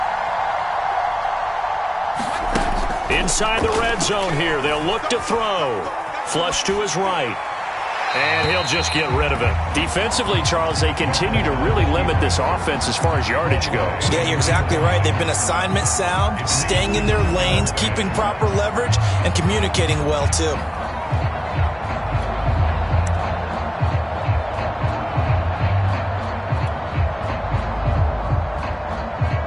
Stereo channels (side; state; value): both; identical; correlation 1.00